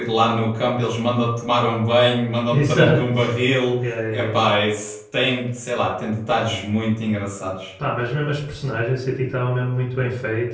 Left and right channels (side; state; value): both; identical; correlation 1.00